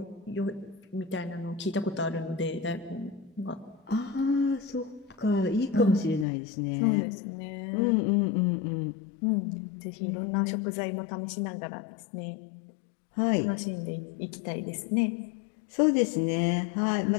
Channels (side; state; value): right; drops out; at 6.2 s